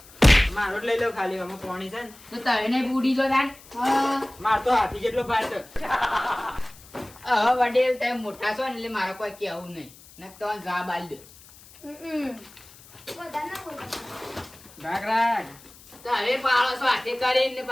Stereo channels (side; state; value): left; noise; hiss, 22 dB below the sound